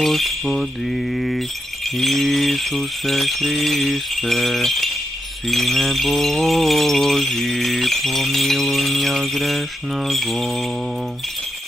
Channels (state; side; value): normal; both; correlation 0.84